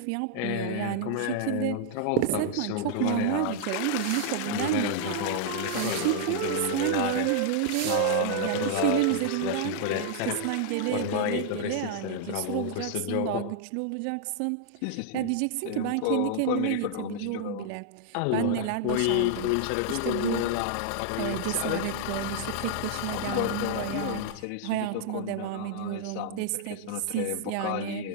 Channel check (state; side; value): different; both; correlation -0.01